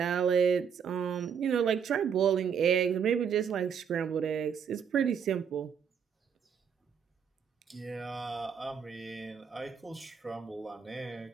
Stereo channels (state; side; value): quieter; left; 7.3 dB